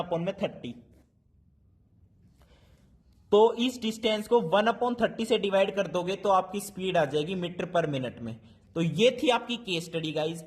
तो इस डिस्टेंस को 1/30 से डिवाइड कर दोगे तो आपकी स्पीड आ जाएगी मीटर पर मिनट में। तो ये थी आपकी केस स्टडी गाइज।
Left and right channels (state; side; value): identical; both; correlation 1.00